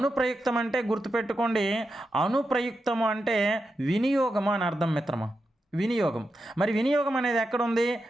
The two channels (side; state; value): both; normal; correlation 0.88